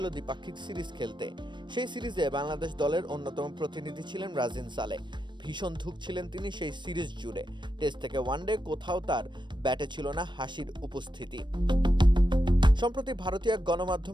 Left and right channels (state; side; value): late; left; 0.22 ms